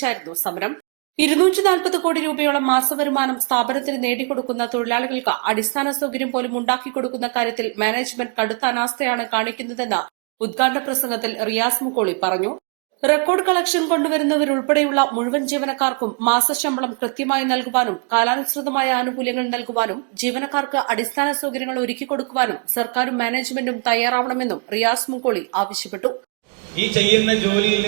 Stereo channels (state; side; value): quieter; left; 36.8 dB